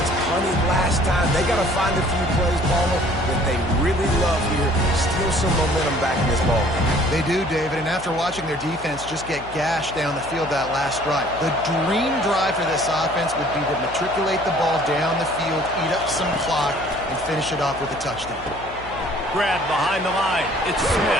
punted last time. They got to find a few plays, Paula, that they really love here. Steal some momentum back in this ball game. They do, David, and after watching their defense just get gashed down the field that last drive, the dream drive for this offense would be to matriculate the ball down the field, eat up some clock, and finish it off with a touchdown. Grab behind the line. It's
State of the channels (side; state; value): left; noise; hum, 16 dB below the sound